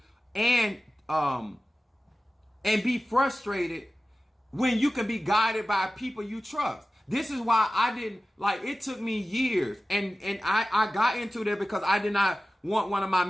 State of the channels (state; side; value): normal; both; correlation 0.95